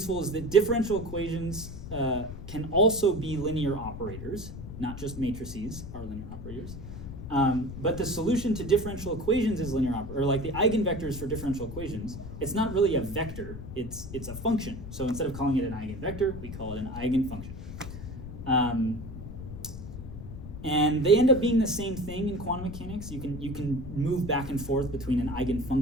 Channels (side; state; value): left; noise; rumble, 10 dB below the sound